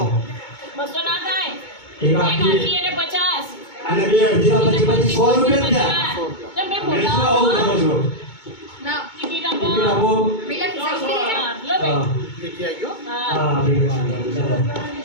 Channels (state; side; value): late; right; 2.2 ms